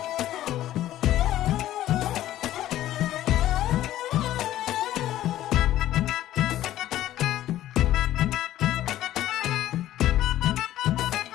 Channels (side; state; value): right; quieter; 13.6 dB